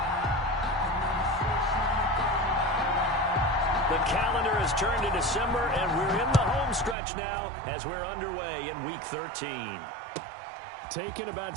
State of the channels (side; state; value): left; drops out; at 7.0 s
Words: The calendar has turned to December, and we're in the home stretch now as we're underway in Week 13. Taken